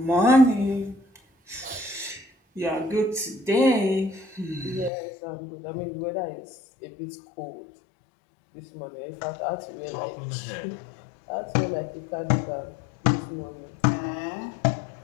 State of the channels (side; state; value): right; drops out; at 4.9 s